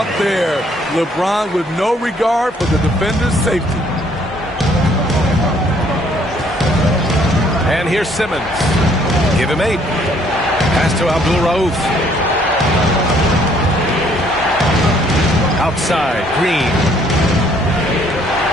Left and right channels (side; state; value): both; normal; correlation 0.64